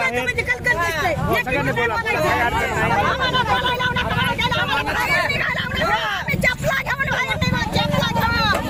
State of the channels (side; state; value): both; identical; correlation 1.00